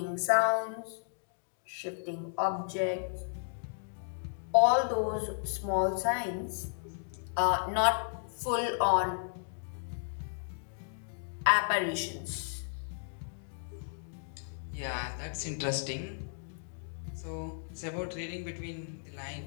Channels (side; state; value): right; silent; digital silence